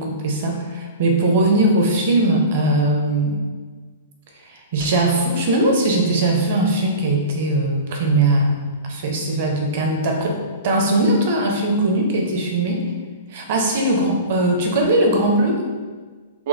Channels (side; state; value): both; inverted; correlation -0.33